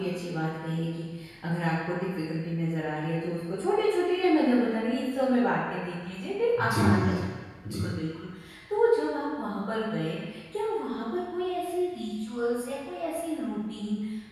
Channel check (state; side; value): identical; both; correlation 1.00